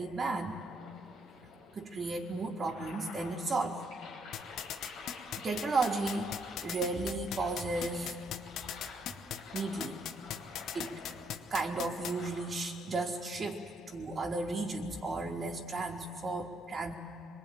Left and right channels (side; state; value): both; normal; correlation 0.73